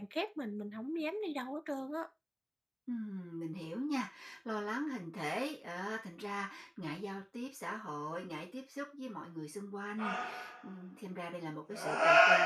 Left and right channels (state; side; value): identical; both; correlation 1.00